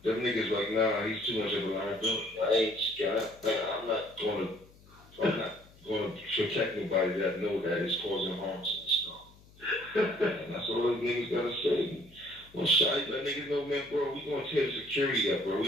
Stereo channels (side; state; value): left; noise; hum, 25 dB below the sound